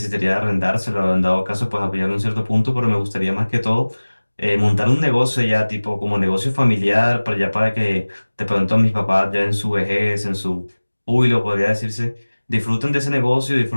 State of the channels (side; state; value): both; inverted; correlation -1.00